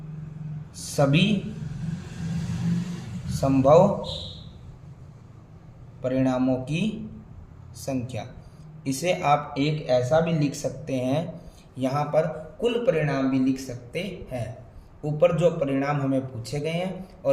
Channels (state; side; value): identical; both; correlation 1.00